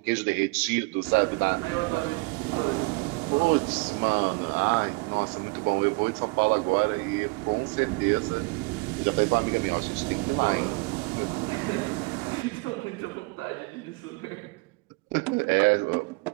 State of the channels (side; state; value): left; quieter; 27.5 dB